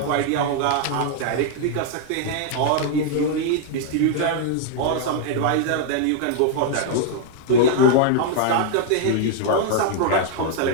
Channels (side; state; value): both; different; correlation 0.00